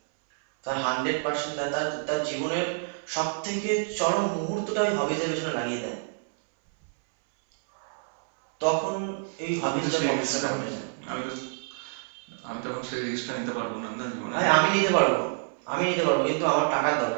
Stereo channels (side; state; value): left; silent; 60 dB below the other